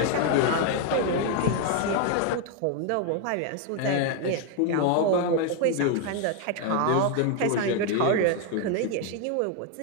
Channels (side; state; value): both; different; correlation 0.01